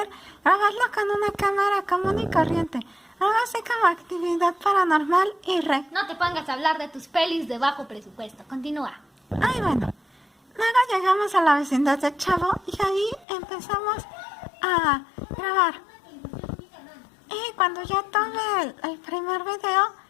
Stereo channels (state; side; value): drops out; right; at 13.2 s